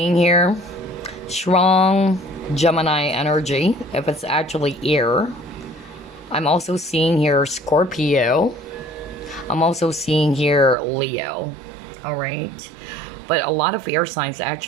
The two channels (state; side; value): drops out; left; at 10.8 s